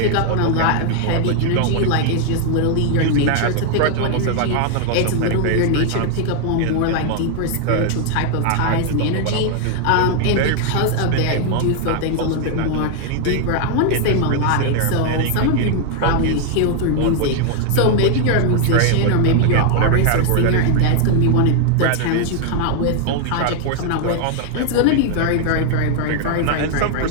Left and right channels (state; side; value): different; both; correlation 0.00